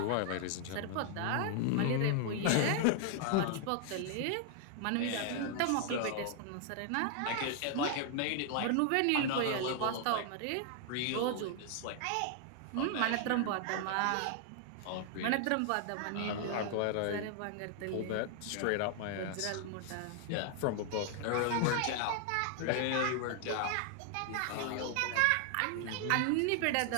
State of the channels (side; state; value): both; different; correlation 0.00